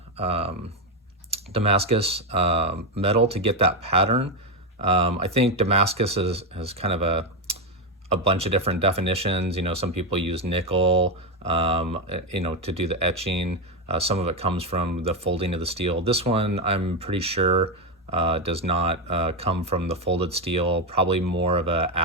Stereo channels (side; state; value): both; normal; correlation 0.09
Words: Damascus metal to get that pattern. I think Damascus has kind of a bunch of different definitions. Some people use nickel, to do the etching. Some of it comes from the folding of the steel. This one, I'm pretty sure, does not come from the folded steel. Probably more of a